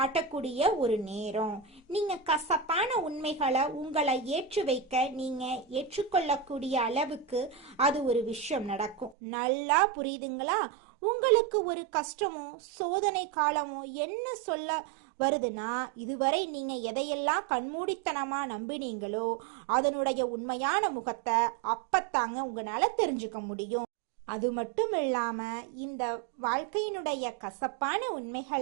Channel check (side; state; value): left; drops out; at 9.2 s